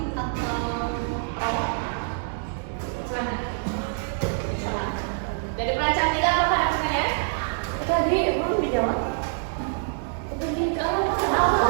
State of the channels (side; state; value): left; silent; digital silence